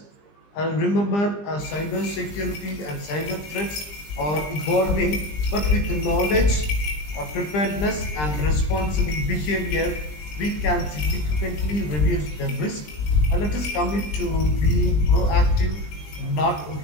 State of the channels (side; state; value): right; late; 20 ms